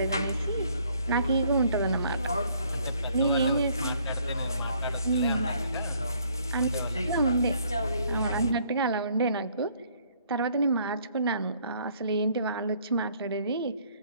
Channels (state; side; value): inverted; both; correlation -0.63